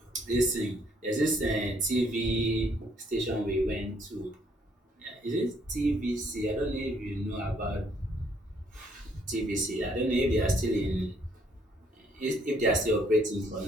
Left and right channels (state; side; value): normal; both; correlation 0.67